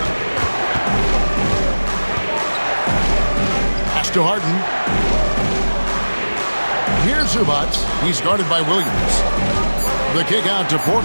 Pass to Harden. Here's Zubac. He's guarded by Williams. The kick out to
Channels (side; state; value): both; inverted; correlation -1.00